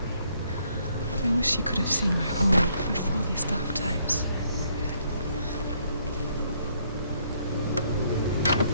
I wish you could have seen my home before these dark times.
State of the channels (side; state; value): both; inverted; correlation -0.69